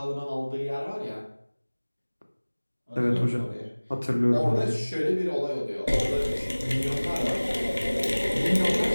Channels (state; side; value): inverted; both; correlation -1.00